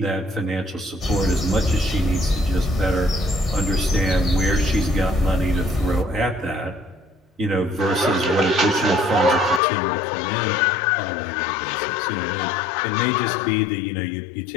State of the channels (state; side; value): drops out; right; at 9.6 s